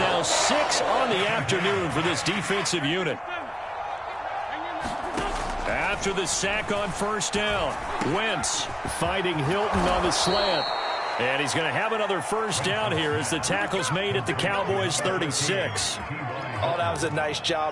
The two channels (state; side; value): identical; both; correlation 1.00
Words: 6 on the afternoon for this defensive unit. After the sack on first down, Wentz fighting Hilton on the slant. And he's going to have another first down here as the tackle's made at the Cowboys' 36. Oh, that was a nice